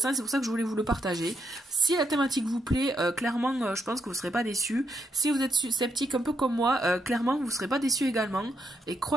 C'est pour ça que je voulais vous le partager. Si la thématique vous plaît, clairement je pense que vous ne serez pas déçus. Si vous êtes sceptique un peu comme moi, clairement vous ne serez pas déçus également. Et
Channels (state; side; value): normal; both; correlation 0.78